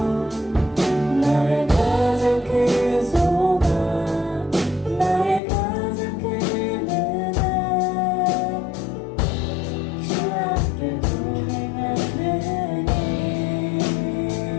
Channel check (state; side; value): drops out; right; at 5.4 s